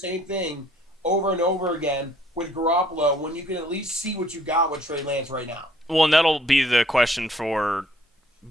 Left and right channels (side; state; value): both; normal; correlation 0.61